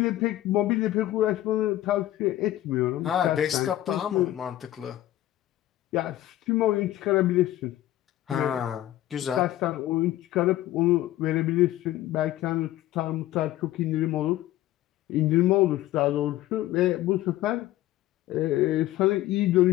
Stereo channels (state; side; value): quieter; right; 14.6 dB